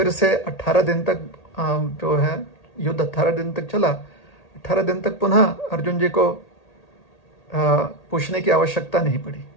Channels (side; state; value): right; late; 1.8 ms